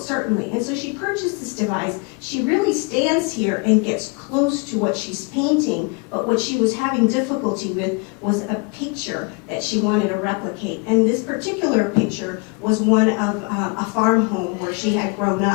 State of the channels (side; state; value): right; quieter; 30.0 dB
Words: certainly. And so she purchased this device. She really stands here and gets close to what she's painting, but what she was having difficulty with was a picture that she wanted to replicate. And this particular picture was one of a farm home where she had grown